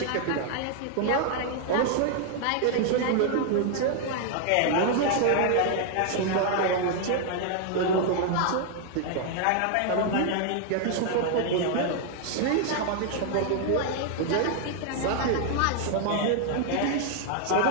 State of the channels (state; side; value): different; both; correlation 0.00